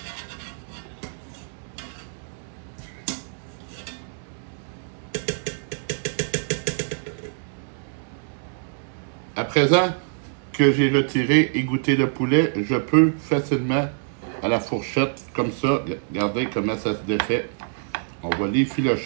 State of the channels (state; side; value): silent; left; digital silence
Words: À présent que j'ai retiré et goûté le poulet, je peux facilement à la fourchette, comme ça, regardez comment ça se défait. On va